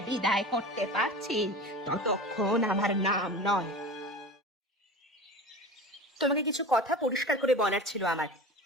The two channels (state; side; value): normal; both; correlation 0.33